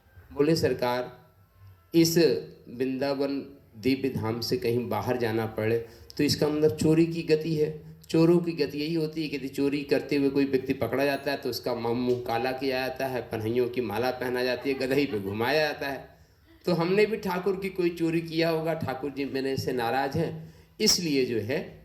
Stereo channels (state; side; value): identical; both; correlation 1.00